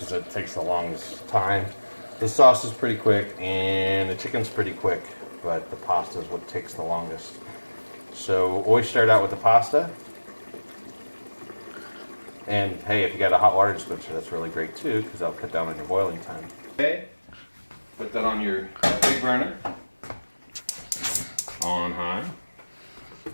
it takes the longest time. The sauce is pretty quick and the chicken's pretty quick, but the pasta is what takes the longest. So always start out with the pasta. And hey, if you got a hot water dispenser, that's really great too, because that'll cut down on your boiling time. Okay, put that on your big burner, on high.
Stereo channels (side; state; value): both; inverted; correlation -1.00